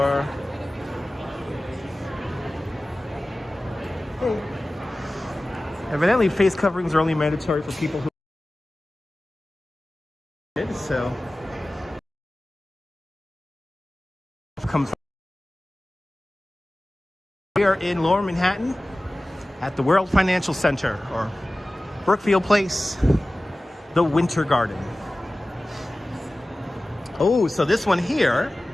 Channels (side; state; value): both; normal; correlation 0.97